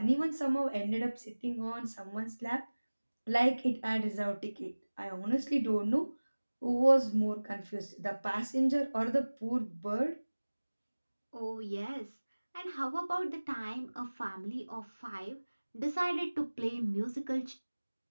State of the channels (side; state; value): both; inverted; correlation -1.00